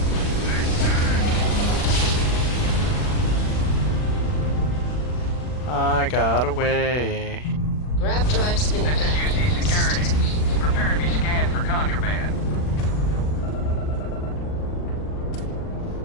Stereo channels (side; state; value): right; late; 40 ms